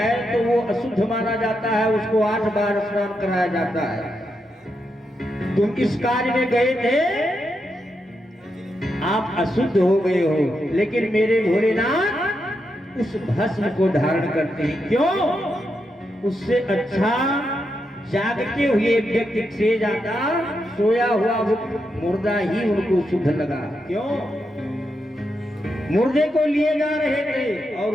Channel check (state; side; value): normal; both; correlation 0.84